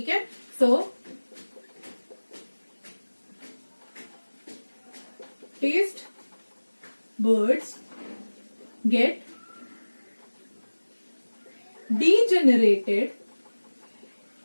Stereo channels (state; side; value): inverted; both; correlation -1.00